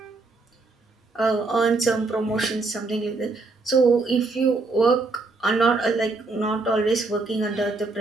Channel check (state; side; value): quieter; left; 3.6 dB